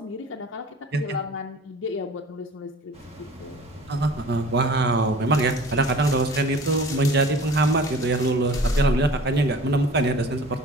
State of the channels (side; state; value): both; normal; correlation 0.45